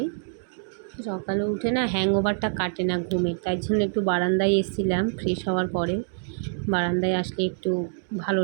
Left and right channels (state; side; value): silent; left; digital silence